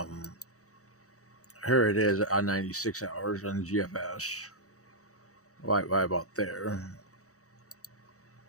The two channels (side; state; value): right; late; 0.65 ms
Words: Here it is on 96 hours on the GFS. Right about there.